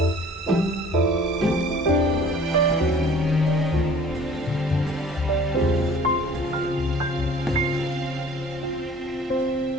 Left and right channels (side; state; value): both; normal; correlation 0.50